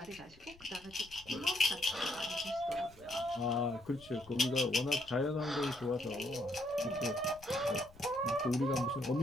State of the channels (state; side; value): noise; left; rumble, 23 dB below the sound